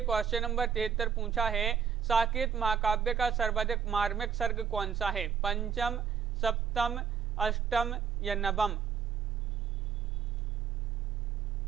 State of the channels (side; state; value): left; quieter; 7.3 dB